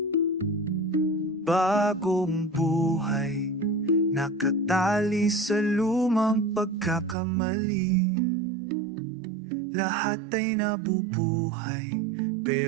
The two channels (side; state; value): left; drops out; at 7.2 s